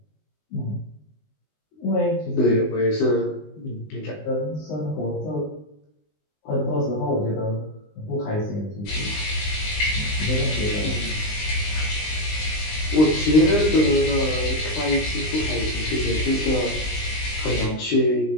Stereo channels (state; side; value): late; right; 19 ms